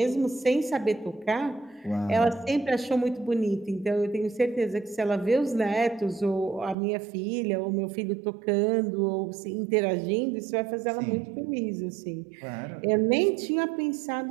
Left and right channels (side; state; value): left; drops out; at 6.8 s